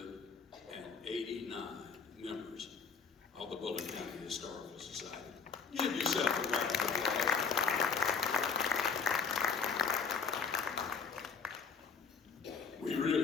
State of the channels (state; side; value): quieter; right; 5.6 dB